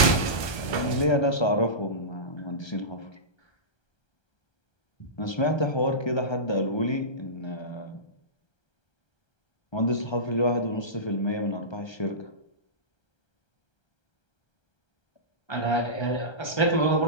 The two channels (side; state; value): right; late; 1.3 ms